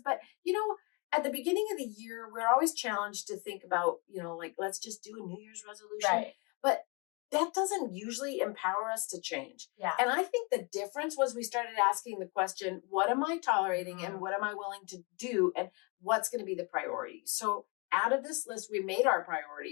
but at the beginning of the year, we're always challenged to think about, like, let's just do a New Year's resolution. Right. But that doesn't usually empower us to change. Yeah. And I think the difference was we started asking the question, what am I tolerating and what am I willing to do, and what's going to be the priority? So out of this list, we made our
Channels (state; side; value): quieter; right; 30.3 dB